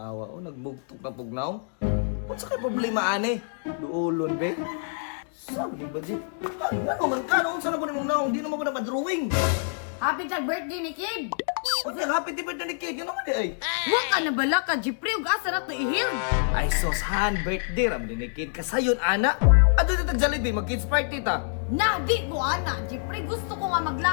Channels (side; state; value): right; silent; digital silence